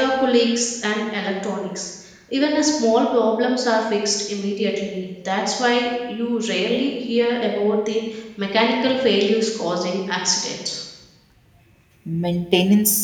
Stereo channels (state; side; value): identical; both; correlation 1.00